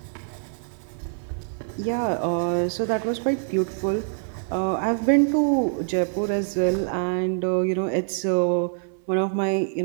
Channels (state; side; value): silent; left; 60 dB below the other